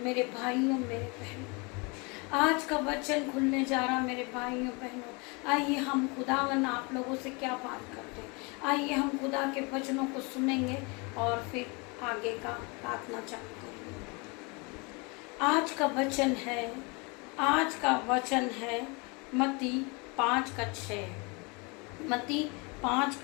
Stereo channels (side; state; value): right; quieter; 29.7 dB